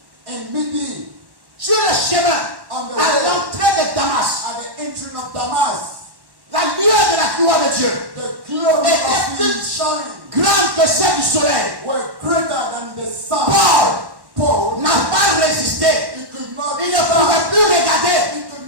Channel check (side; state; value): left; late; 1.1 ms